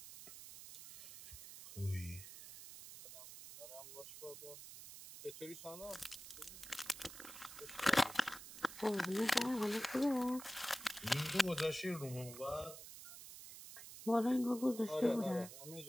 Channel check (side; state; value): right; noise; hiss, 13 dB below the sound